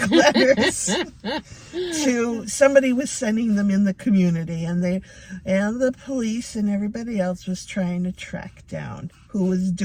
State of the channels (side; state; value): both; identical; correlation 1.00